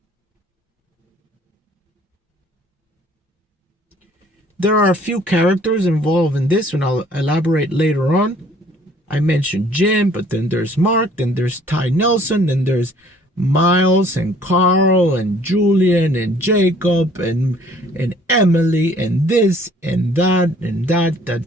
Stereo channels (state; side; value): normal; both; correlation 0.57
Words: There are a few characters involved in this, and I'll elaborate later on. I mentioned Jim, but then there's Mark, then there's Ty Nelson, then there's Miles and Carl and Julian and Jacob and Emily and this and that and